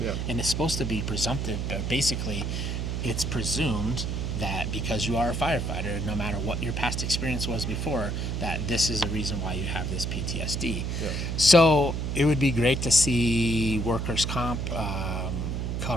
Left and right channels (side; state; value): right; noise; hum, 1 dB below the sound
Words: Yeah. And it's supposed to be presumptive, but basically it's presumed that because you are a firefighter, no matter what your past experience was before, that this is a reason why you have this PTSD. Yeah. So it would be great to see workers' comp